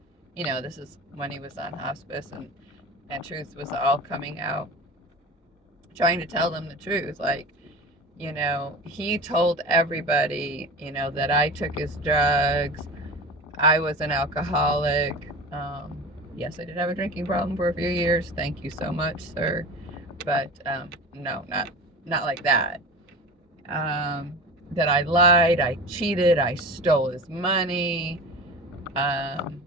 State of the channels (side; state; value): both; normal; correlation 0.33